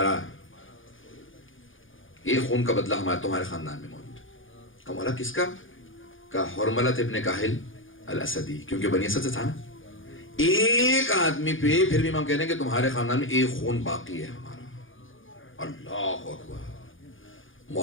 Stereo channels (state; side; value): late; right; 0.58 ms